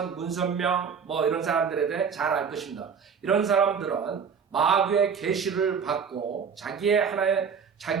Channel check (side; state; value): left; quieter; 6.4 dB